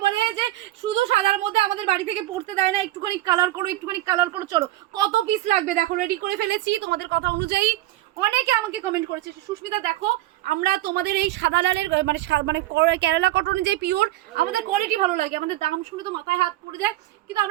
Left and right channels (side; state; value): left; quieter; 15.9 dB